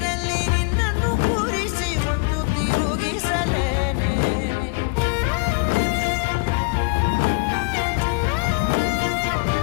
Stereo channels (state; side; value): quieter; right; 30.3 dB